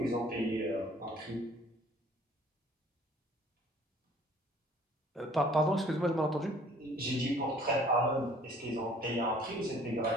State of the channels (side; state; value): both; normal; correlation 0.55